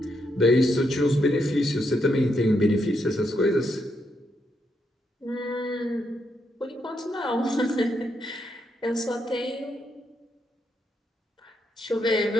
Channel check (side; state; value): both; normal; correlation 0.79